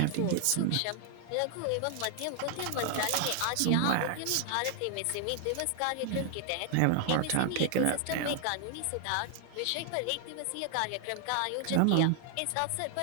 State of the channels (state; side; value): different; both; correlation 0.00